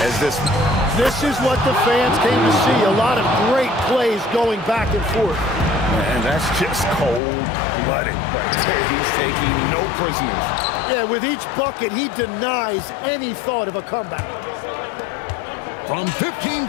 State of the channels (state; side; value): drops out; right; at 7.2 s